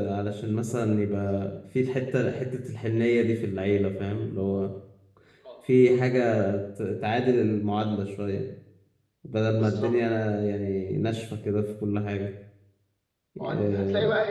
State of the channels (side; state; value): both; identical; correlation 1.00